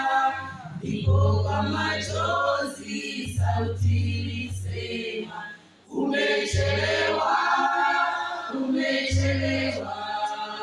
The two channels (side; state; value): both; identical; correlation 1.00